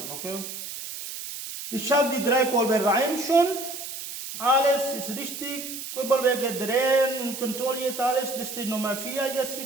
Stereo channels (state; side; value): noise; right; hiss, 8 dB below the sound